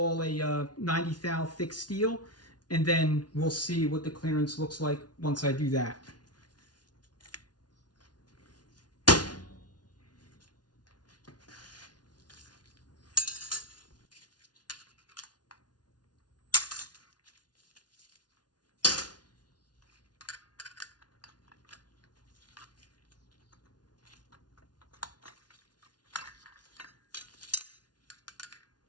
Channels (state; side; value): late; right; 0.69 ms